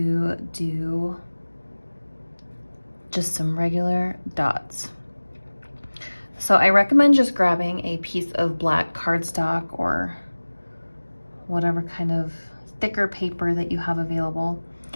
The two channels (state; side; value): inverted; both; correlation -1.00